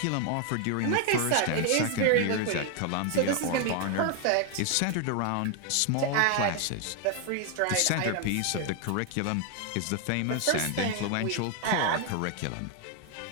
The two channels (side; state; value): both; different; correlation 0.01